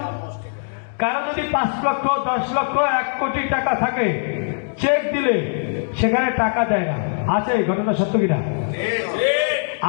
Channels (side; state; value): right; silent; digital silence